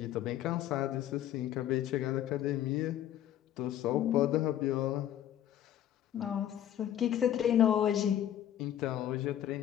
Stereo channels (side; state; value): right; quieter; 11.4 dB